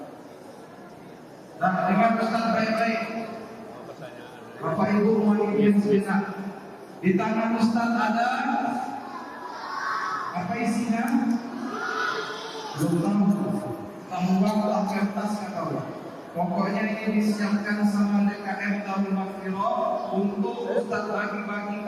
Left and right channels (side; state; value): both; identical; correlation 1.00